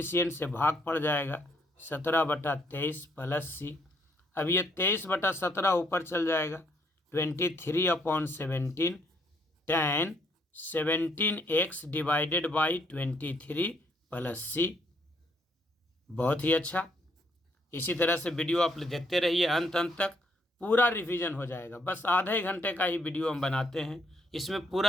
से भाग पड़ जाएगा 17/23 प्लस सी। अब ये 23/17 ऊपर चल जाएगा 23/17 tan 17x divided by 23 plus C. बहुत ही अच्छा। इसी तरह से वीडियो आप देखते रहिए अंत तक, पूरा रिवीजन हो जाएगा। बस आधे घंटे का ही वीडियो हम बनाते हैं, इसमें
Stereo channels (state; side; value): normal; both; correlation 0.70